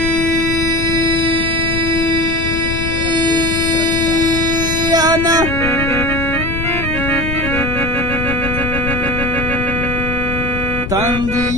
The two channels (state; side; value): noise; left; rumble, 5 dB below the sound